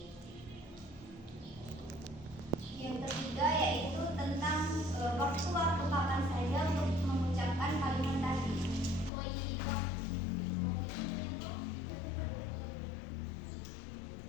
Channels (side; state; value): right; drops out; at 9.1 s